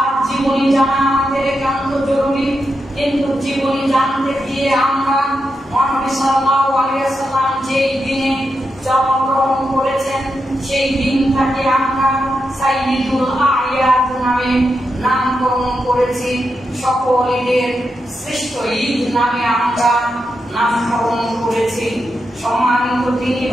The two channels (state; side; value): normal; both; correlation 0.86